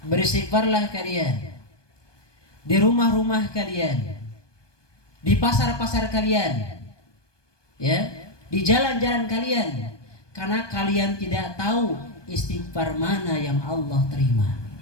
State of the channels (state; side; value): late; right; 1.2 ms